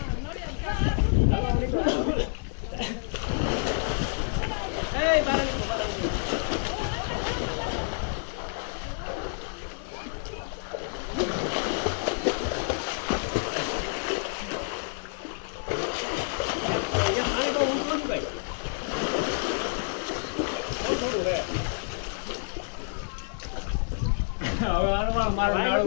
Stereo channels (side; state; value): right; silent; 59 dB below the other